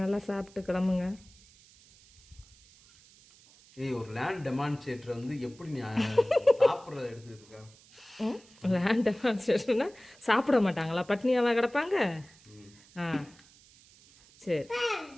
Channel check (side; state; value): right; noise; hiss, 26 dB below the sound